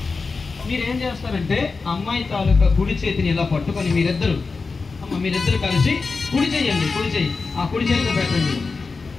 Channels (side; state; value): right; quieter; 4.3 dB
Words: మీరు ఏం చేస్తారంటే అమ్మాయి తాలూకా కుడి చేతిని ఇలా పట్టుకొని మీరిద్దరు కలిసి కుడి చెయ్యండి. కుడి చెయ్యి ఆ కుడి చేతిలో పెట్టండి.